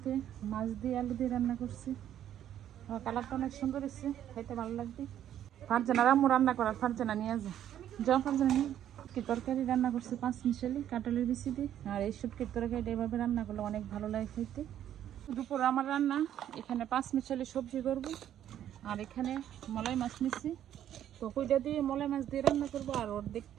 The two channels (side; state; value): left; quieter; 10.9 dB